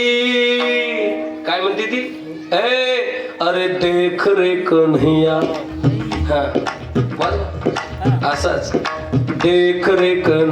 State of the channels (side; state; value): both; identical; correlation 1.00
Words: काय म्हणते ती? अरे देख रे कन्हैया. हा असंच, देख रे